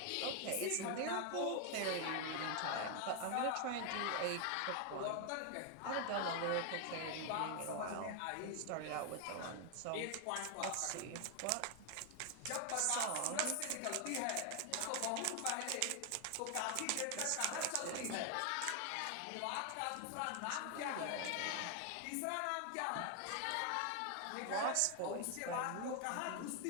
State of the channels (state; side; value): different; both; correlation 0.00